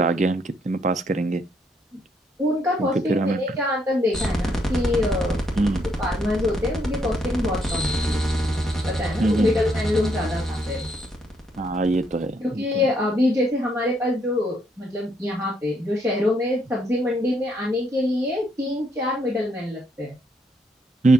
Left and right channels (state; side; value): normal; both; correlation 0.73